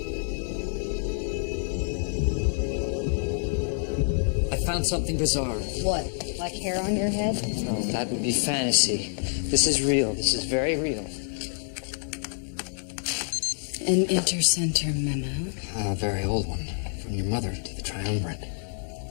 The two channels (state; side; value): silent; right; digital silence